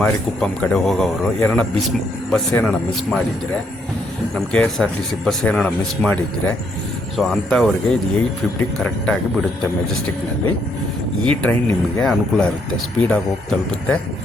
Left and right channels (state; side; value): normal; both; correlation 0.73